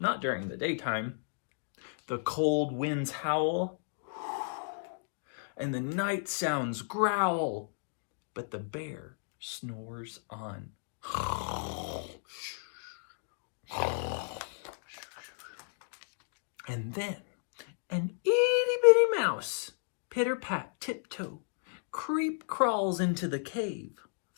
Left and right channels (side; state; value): right; silent; digital silence